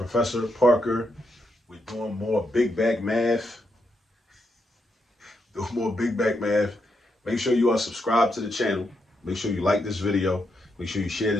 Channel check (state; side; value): normal; both; correlation 0.81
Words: Parker. We're doing more big back math. Doing more big back math. Make sure you are subscribed to the channel. Make sure you like this video. Make sure you share